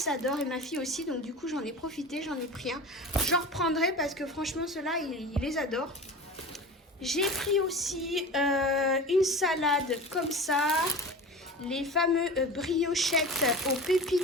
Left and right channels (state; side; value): normal; both; correlation 0.34